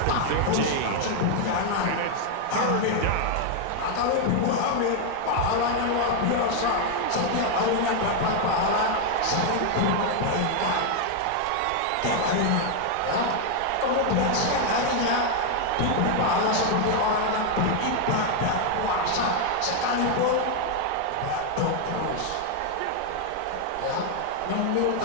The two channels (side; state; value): both; different; correlation 0.00